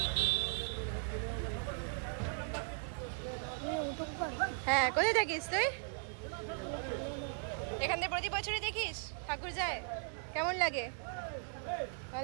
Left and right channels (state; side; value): silent; left; 53 dB below the other